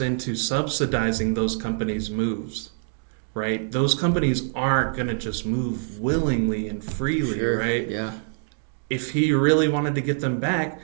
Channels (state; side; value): silent; left; digital silence